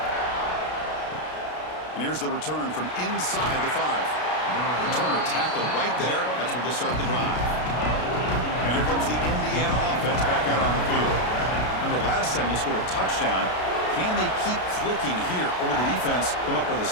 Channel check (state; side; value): late; right; 33 ms